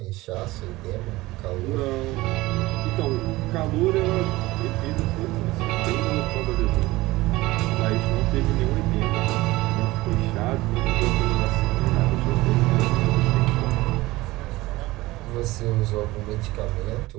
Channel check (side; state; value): left; quieter; 19.3 dB